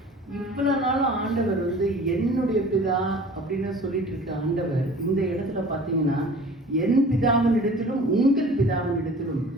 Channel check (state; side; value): normal; both; correlation 0.45